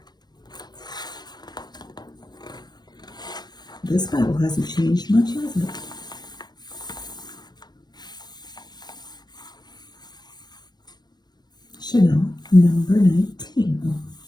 This bottle hasn't changed much, has it? Chanel number 19. Oh,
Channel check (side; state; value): right; late; 0.20 ms